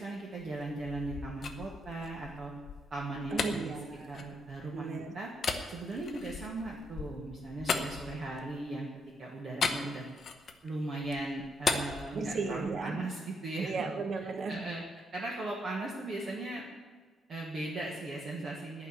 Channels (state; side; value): normal; both; correlation 0.76